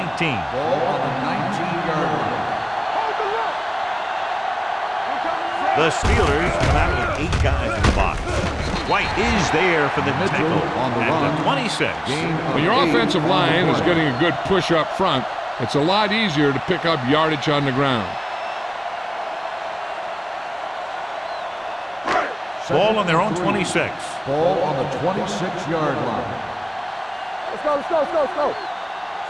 Ball on the 19-yard line. The Steelers come out with 8 guys in the box. White is there for the tackle at the 26. When your offensive line is getting a good push up front, it's a lot easier to pick up yardage on the ground. Ball on their own 26. Ball on the 26-yard line. Let's go, let's go, let's go, let's go.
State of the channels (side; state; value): both; identical; correlation 1.00